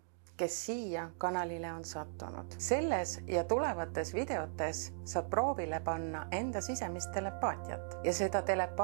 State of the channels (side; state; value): left; silent; digital silence